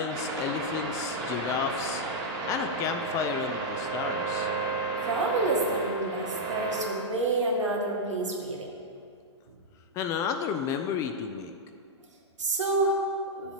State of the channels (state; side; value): normal; both; correlation -0.03